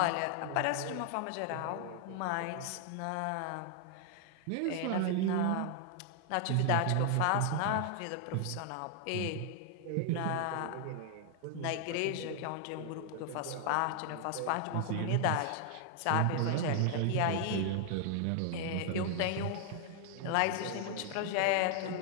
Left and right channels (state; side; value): different; both; correlation 0.00